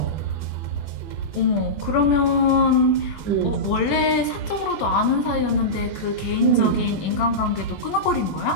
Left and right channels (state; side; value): late; right; 21 ms